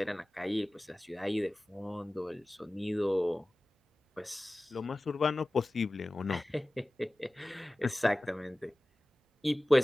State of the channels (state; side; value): normal; both; correlation 0.97